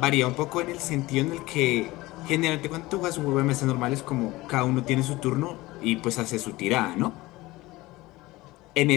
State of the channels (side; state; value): right; quieter; 19.7 dB